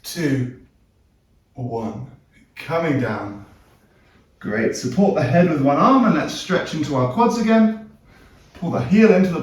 2, 1. Coming down. Great. Support the head with one arm and let's stretch into our quads again. Pull the heel into the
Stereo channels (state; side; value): identical; both; correlation 1.00